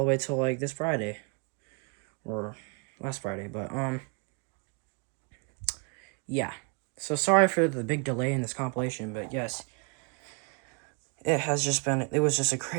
way till this Friday. Or last Friday, but yeah. So sorry for the big delay in this compilation, but yes, it was just a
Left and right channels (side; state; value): left; quieter; 35.6 dB